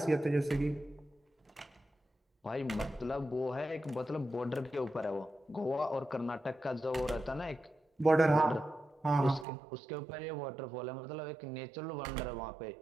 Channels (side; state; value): left; drops out; at 9.5 s